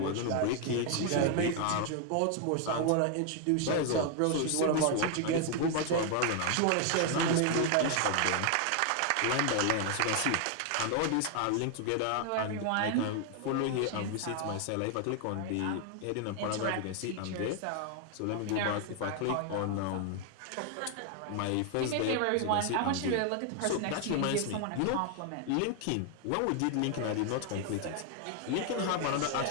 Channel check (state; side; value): different; both; correlation 0.00